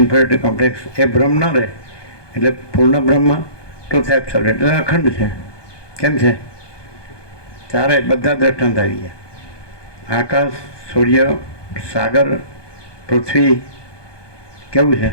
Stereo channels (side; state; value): right; late; 1.2 ms